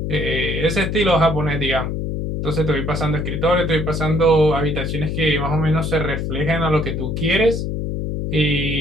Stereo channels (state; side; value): noise; left; hum, 2 dB below the sound